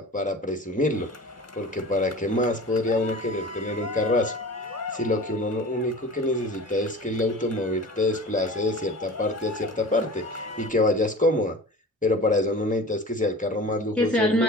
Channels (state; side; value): normal; both; correlation 0.38